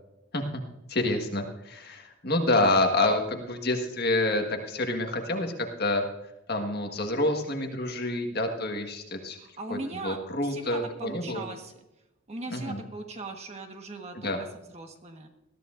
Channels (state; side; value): normal; both; correlation 0.06